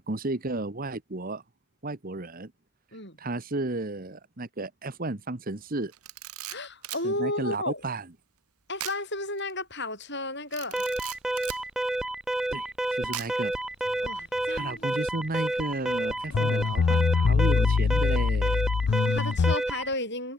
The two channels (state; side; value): normal; both; correlation 0.65